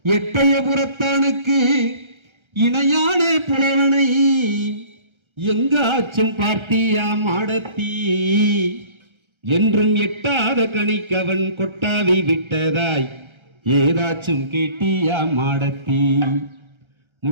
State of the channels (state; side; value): late; left; 1.3 ms